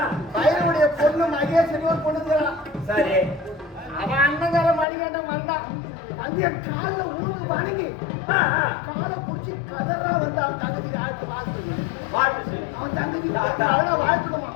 பையனுடைய பொண்ணு மகேஸ்வரி ஒரு பொண்ணு இருக்கிறான். சரி, அவன் அண்ணங்கார மணிகண்டன் வந்தான். வந்து என் காலில் உருவு வணங்கி காலை பிடிச்சி கதறா வந்து அவன் தங்கச்சிக்கு ஆழ்த்து வாழ்த்து. அவன் தங்கச்சி வாழ்த்துடுமா?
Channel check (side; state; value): right; drops out; at 4.9 s